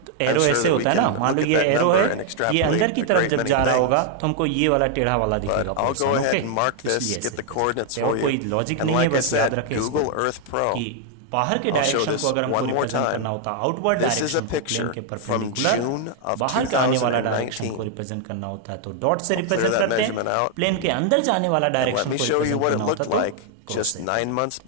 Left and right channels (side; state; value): both; different; correlation 0.00